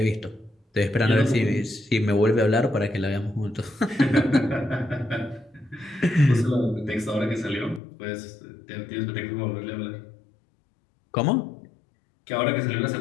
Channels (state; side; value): drops out; right; at 7.8 s